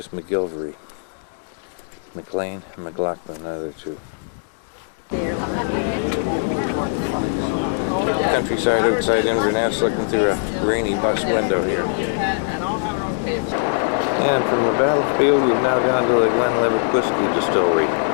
McGilvery. McLean and McLaughlin, another 2. Countryside outside Inverness, looking through a rainy bus window here. And from the battlefield, we've now gone to the Glen Whiskey Distillery.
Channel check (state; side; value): silent; right; digital silence